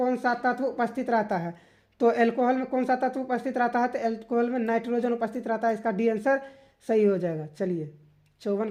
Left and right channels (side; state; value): both; identical; correlation 1.00